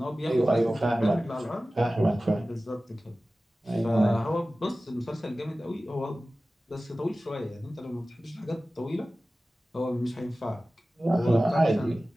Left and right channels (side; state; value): both; normal; correlation 0.96